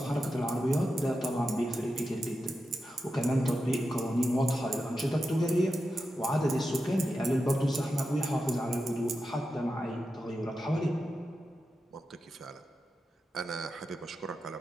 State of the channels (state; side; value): normal; both; correlation 0.90